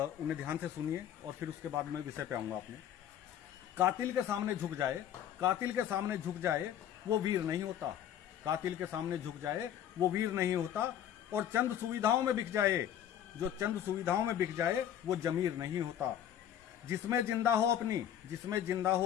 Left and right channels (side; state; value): right; quieter; 10.3 dB